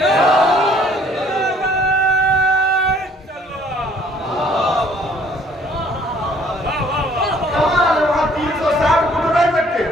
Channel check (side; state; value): both; normal; correlation 0.59